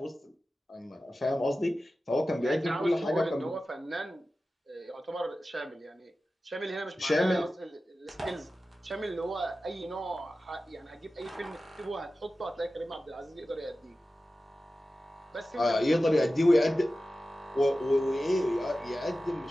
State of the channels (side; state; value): both; normal; correlation 0.94